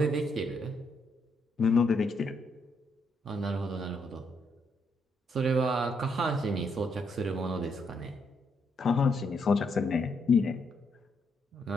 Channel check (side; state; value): both; normal; correlation 0.76